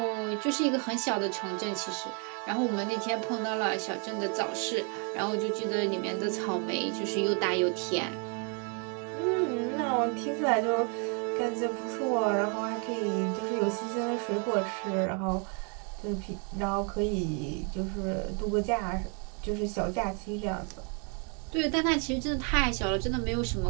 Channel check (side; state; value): left; quieter; 37.6 dB